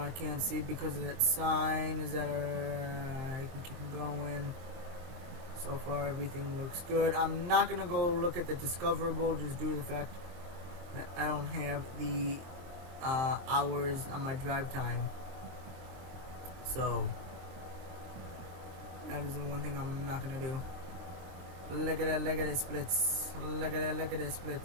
I can't see because of that sign. Is that I can keep going. So far everything looks good. I'm not gonna go look at the discoverable just due to the fact that I don't have the hours on my drive time. So that is the one thing I'm not gonna do. Look at that splits. Look at that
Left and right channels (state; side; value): late; left; 23 ms